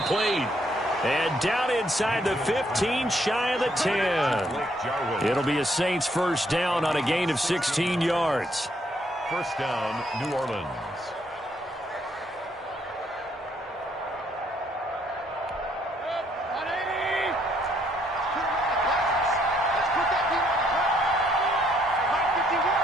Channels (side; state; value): both; normal; correlation 0.70